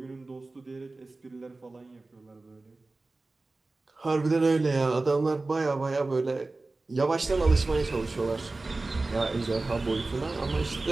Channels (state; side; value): quieter; left; 3.3 dB